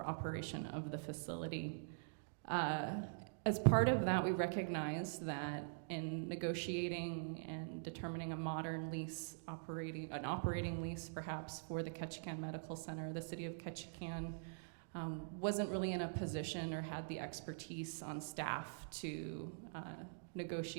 operation of the facility. As part of that, we recognize that in negotiating and determining a modern lease an operating lease perhaps for the Ketchikan Medical Center, the city of Ketchikan wasn't really in a position or had the expertise on staff to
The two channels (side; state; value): left; silent; digital silence